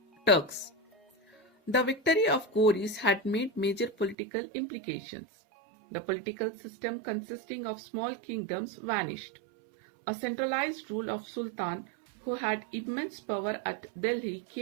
Turks. The victory of Ghouris had made major political implications. The political system consisting of small kingdoms vanished. A centralized rule of Sultan who had immense power at Delhi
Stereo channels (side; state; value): left; drops out; at 4.2 s